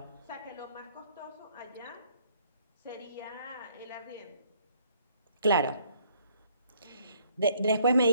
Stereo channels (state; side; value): inverted; both; correlation -0.64